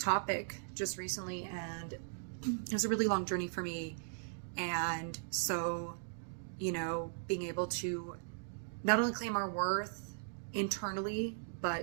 just recently, and it was a really long journey for me. And so, being able to not only claim our worth internally,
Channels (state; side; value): silent; left; digital silence